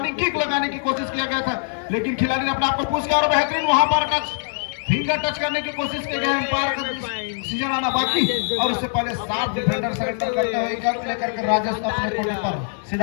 किक लगाने की कोशिश किया गया था, लेकिन खिलाड़ी ने अपने आप को पुश किया और बेहतरीन वहां पर फिंगर टच करने की कोशिश की गई। एम्पायर का सीजन आना बाकी और उससे पहले 7 डिफेंडर सरेंडर करते हुए एक अंक लेकर के राजेश अपने कोटे पर।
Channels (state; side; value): silent; right; digital silence